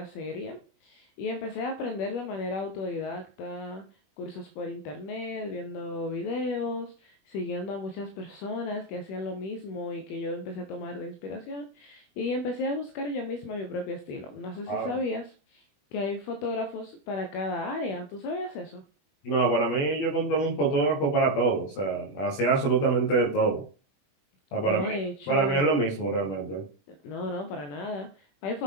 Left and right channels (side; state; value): right; late; 21 ms